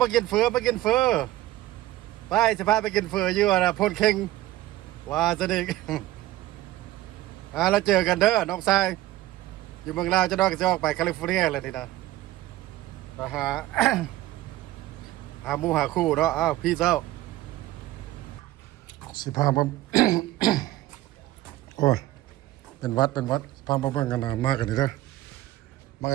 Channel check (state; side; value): quieter; left; 15.9 dB